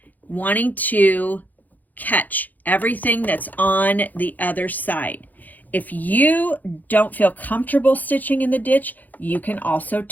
wanting to catch everything that's on the other side. If you don't feel comfortable stitching in the ditch, you can also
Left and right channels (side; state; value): right; late; 0.083 ms